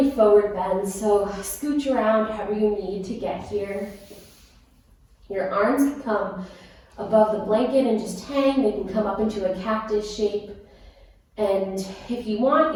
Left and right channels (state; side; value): identical; both; correlation 1.00